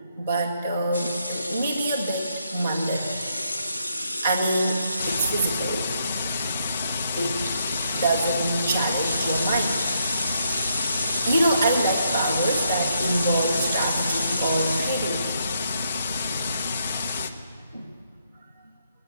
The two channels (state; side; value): inverted; both; correlation -0.76